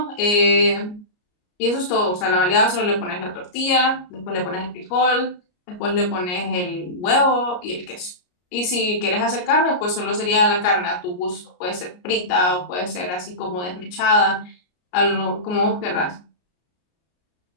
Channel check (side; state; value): right; late; 33 ms